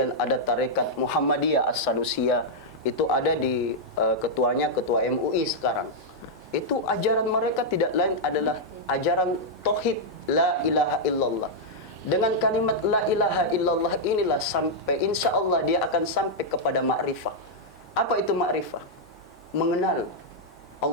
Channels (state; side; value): normal; both; correlation -0.05